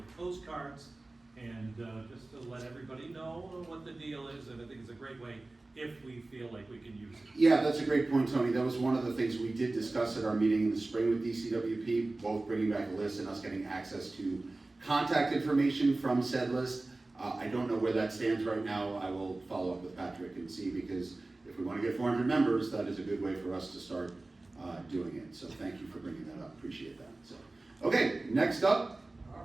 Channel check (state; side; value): quieter; left; 3.0 dB